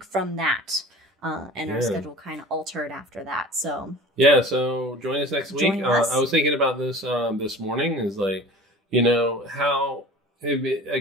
from that. And our schedule kind of altered after that. So join us next week. I was thinking about this this morning. Is like, how a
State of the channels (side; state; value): both; normal; correlation 0.40